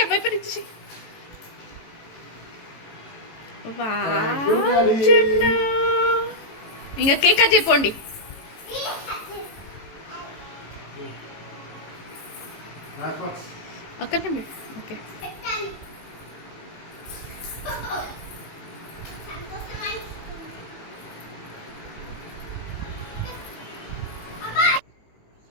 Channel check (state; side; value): late; right; 18 ms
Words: వైపర్ ఇచ్చేసి. ఇంకా cake cut చెప్పండి. అక్కడనే okay.